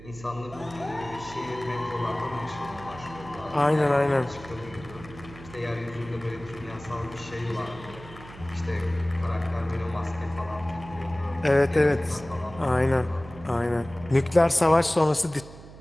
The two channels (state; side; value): noise; right; hum, 17 dB below the sound